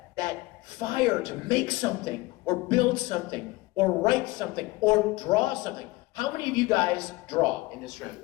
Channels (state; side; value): quieter; right; 21.1 dB